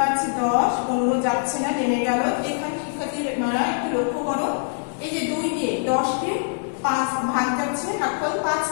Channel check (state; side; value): silent; right; digital silence